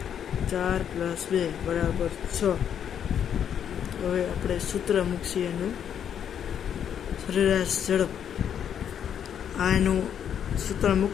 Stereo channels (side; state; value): right; quieter; 8.8 dB